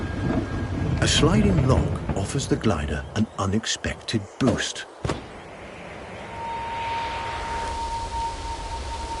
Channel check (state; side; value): identical; both; correlation 1.00